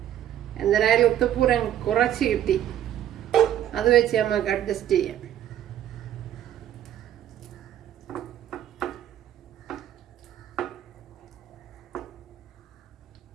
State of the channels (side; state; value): left; quieter; 11.2 dB